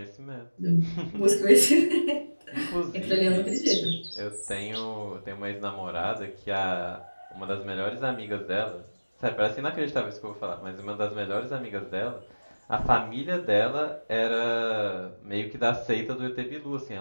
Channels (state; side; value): inverted; both; correlation -1.00